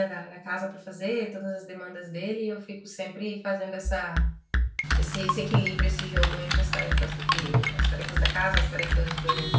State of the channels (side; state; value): both; identical; correlation 1.00